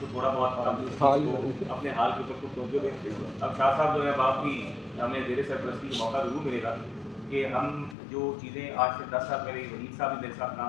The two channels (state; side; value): drops out; right; at 8.0 s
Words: तो थोड़ा बहुत अपने हाल के ऊपर कुछ तवज्जो दें। अब शाह साहब जो है आप भी हमें जेर सरपरस्ती का मौका जरूर मिलेगा कि हम जो चीज़ें आज से 10 साल पहले वहीद साहब भी मेरे साथ